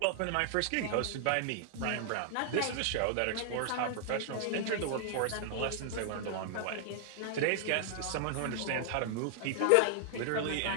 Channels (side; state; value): both; different; correlation 0.00